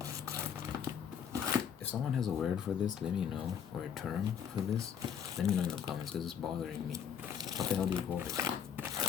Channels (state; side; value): quieter; right; 8.1 dB